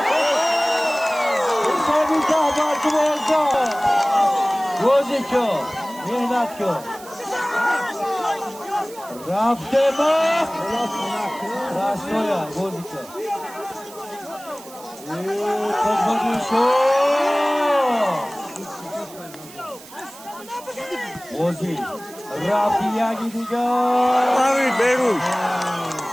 Hisobida barkamozda. O'zi ko, mehnat ko. Raftema. Rastoya, o'zi ko. Qazbadi sho. O'zi. Rafiya gidiga. Avi Berun.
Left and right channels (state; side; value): noise; right; hiss, 19 dB below the sound